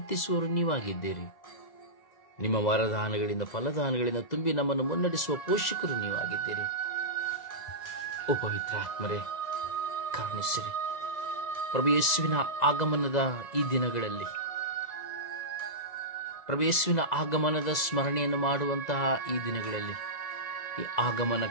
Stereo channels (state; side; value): late; right; 2.0 ms